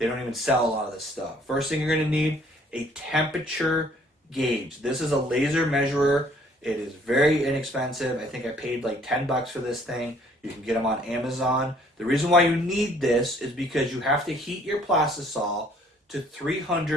don't even sell a lot of this stuff. First thing you're going to need, a temperature gauge. This is a laser measurer. It is very inexpensive. I think I paid like $10 for this thing. You can get them on Amazon. The reason why you need this is because you have to heat your plastisol to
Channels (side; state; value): both; normal; correlation 0.60